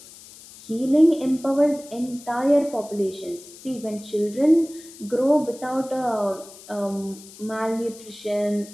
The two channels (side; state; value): left; noise; hiss, 19 dB below the sound